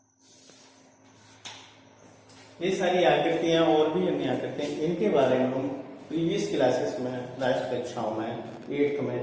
ये सारी आकृतियां और भी अन्य आकृतियां, इनके बारे में हम प्रीवियस क्लासेस में, लास्ट कक्षाओं में 8th में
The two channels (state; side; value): identical; both; correlation 1.00